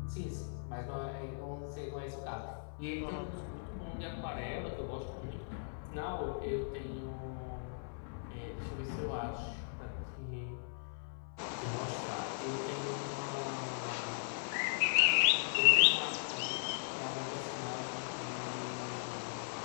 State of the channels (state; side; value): silent; right; 52 dB below the other